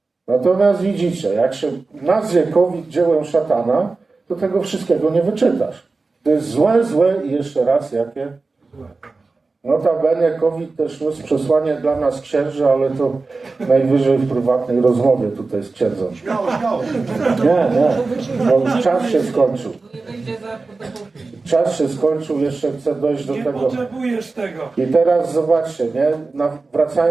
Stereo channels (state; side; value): quieter; left; 3.8 dB